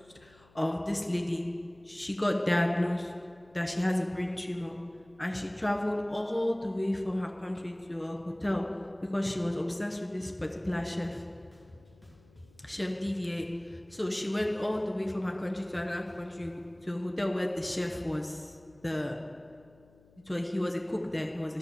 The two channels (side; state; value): left; noise; hum, 27 dB below the sound